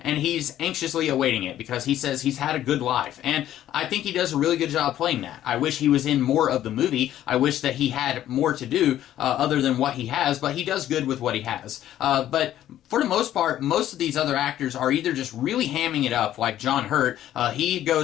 he's anxiously awaiting it because he says he's had a good life. And I think he does a really good job playing that. I wish he was in more of the movie. I wish that he had more to do other than what he has, but he does good with what he has. But for the most part, most of these other actors are either just really hamming it up, like John Hurt. He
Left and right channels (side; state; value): right; quieter; 12.3 dB